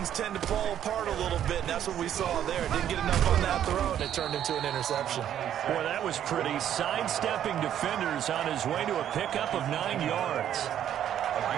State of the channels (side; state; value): left; quieter; 10.4 dB